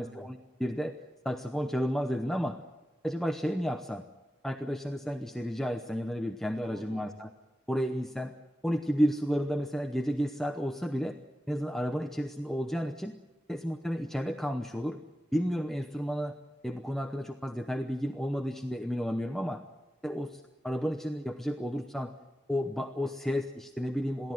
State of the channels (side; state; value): both; normal; correlation 0.93